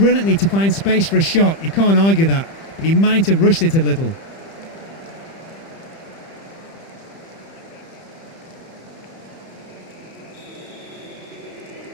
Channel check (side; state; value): right; late; 30 ms